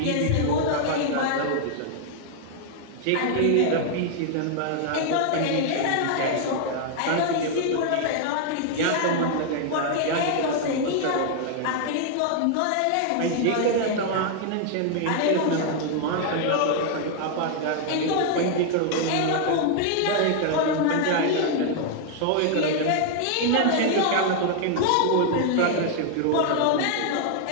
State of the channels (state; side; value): different; both; correlation 0.00